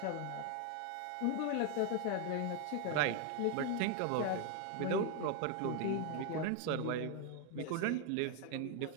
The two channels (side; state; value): both; different; correlation 0.01